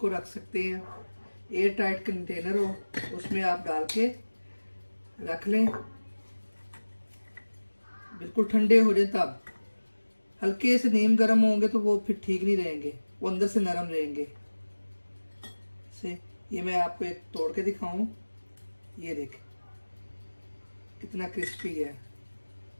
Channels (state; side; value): inverted; both; correlation -1.00